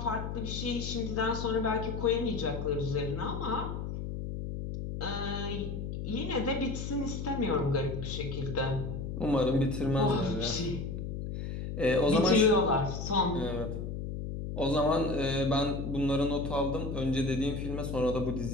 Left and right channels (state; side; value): noise; left; hum, 5 dB below the sound